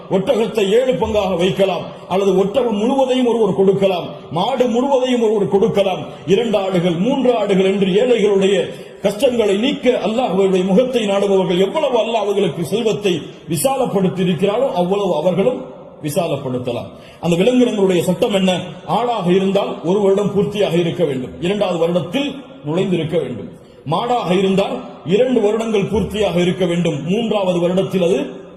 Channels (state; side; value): identical; both; correlation 1.00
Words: ஒட்டகத்தை 7 பங்காக வைக்கலாம். அல்லது ஒட்டகம் முழுவதையும் ஒருவர் கொடுக்கலாம், மாடு முழுவதையும் ஒருவர் கொடுக்கலாம். 2 ஆடுகள் 3 ஆடுகள் என்று ஏழைகளுடைய கஷ்டங்களை நீக்க அல்லாஹ்வுடைய முகத்தை நாடுபவர்கள் எவ்வளவு அல்லாஹ் அவர்களுக்கு செல்வத்தை விசாலப்படுத்தி இருக்கிறாரோ அவ்வளவு அவர்களும் விசாலப்படுத்தலாம். அந்த விலங்கினங்களுடைய சட்டம் என்ன? ஆடாக இருந்தால் 1 வருடம் பூர்த்தியாக இருக்க வேண்டும், 2வது வருடத்தில் நுழைந்திருக்க வேண்டும். மாடாக இருந்தால் 2 வருடங்கள் பூர்த்தியாக இருக்க வேண்டும், 3வது வருடத்தில் அது